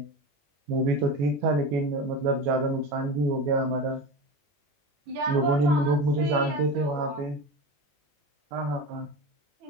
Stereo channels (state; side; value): late; left; 21 ms